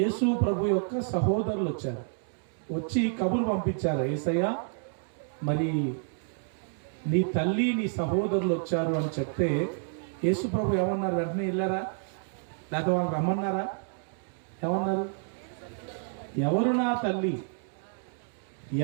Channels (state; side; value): silent; left; 58 dB below the other